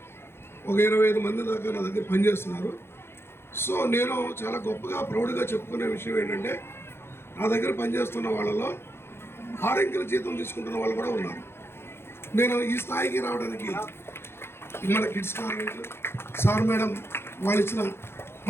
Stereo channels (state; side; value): late; right; 0.12 ms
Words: ఒక 25 మంది దాకా నా దగ్గర పనిచేస్తున్నారు. సో నేను చాలా గొప్పగా ప్రౌడ్గా చెప్పుకునే విషయం ఏంటంటే, నా దగ్గర పనిచేస్తున్న వాళ్ళలో 6 అంకెల జీతం తీసుకుంటున్న వాళ్ళు కూడా ఉన్నారు. నేను ఈ స్థాయికి రావడానికి మన కిడ్స్ కాన్వెంట్ సార్ మేడం వాళ్ళు ఇచ్చిన